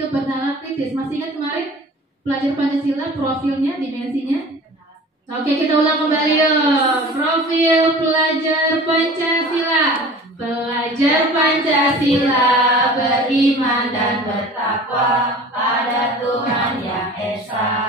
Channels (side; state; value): both; normal; correlation 0.42